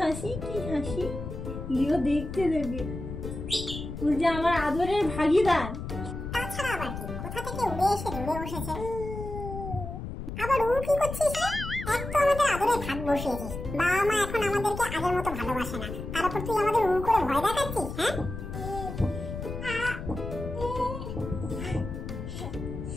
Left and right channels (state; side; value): noise; left; rumble, 7 dB below the sound